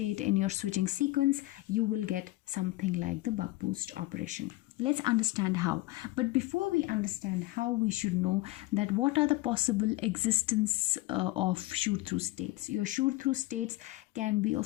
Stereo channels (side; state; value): right; quieter; 19.1 dB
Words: in your switching sequence, you will get something like the buck boost operation. Let's understand how. But before we understand how, we should know that what are the possible existence of shoot through states. Your shoot through states can be